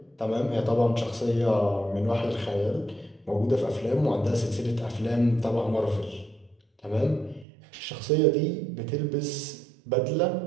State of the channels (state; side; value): drops out; left; at 7.5 s